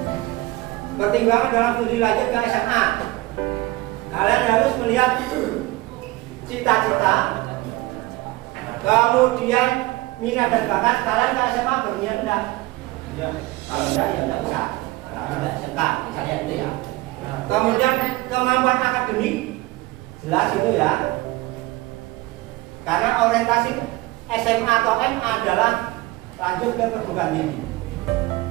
Pertimbangan dalam studi lanjut ke SMA, kalian harus melihat cita-cita, kemudian minat dan bakat. Kalian ke SMA berniat enggak? Kalau enggak ya enggak usah. Enggak enggak, misalnya itu ya. Kemudian kemampuan akademik jelas itu ya. Karena orientasi SMA atau MA adalah lanjut ke perguruan tinggi.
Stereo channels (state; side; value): quieter; left; 20.0 dB